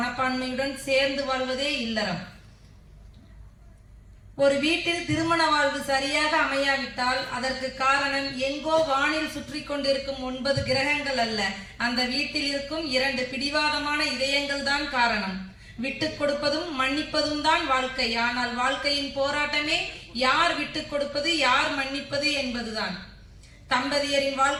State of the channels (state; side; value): identical; both; correlation 1.00